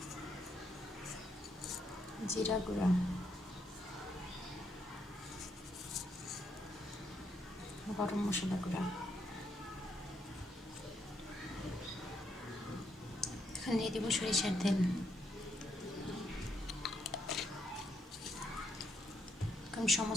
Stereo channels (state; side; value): normal; both; correlation 0.76